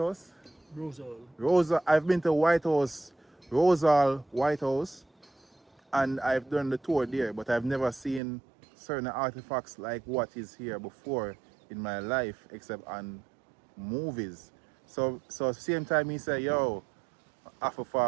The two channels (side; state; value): left; drops out; at 8.2 s